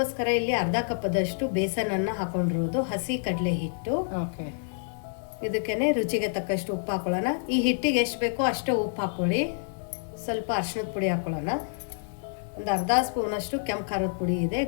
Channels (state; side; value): silent; right; digital silence